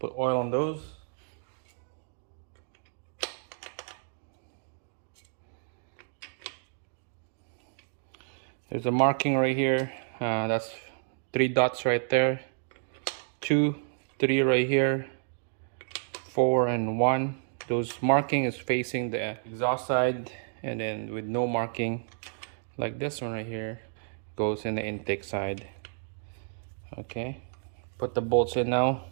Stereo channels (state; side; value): silent; left; digital silence